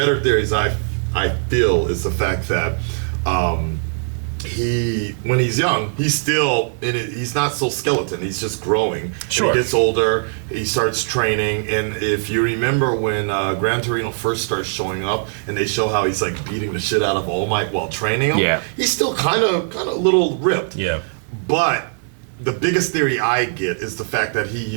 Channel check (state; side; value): silent; left; digital silence